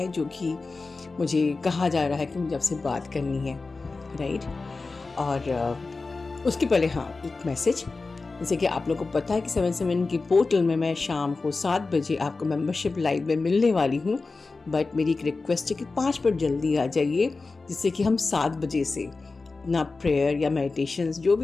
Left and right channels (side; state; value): right; quieter; 3.8 dB